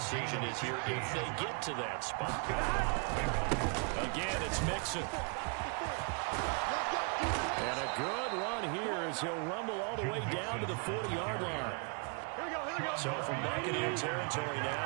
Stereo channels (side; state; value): left; quieter; 36.1 dB